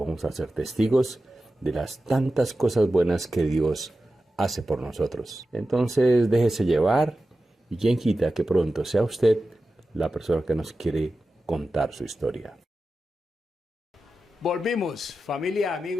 a ser testigos de las tantas cosas buenas que Dios hace por nosotros. Entonces déjese llevar y quien quita que pronto sea usted la persona que nos quiere contar su historia. Volvimos, familia,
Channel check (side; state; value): both; normal; correlation 0.93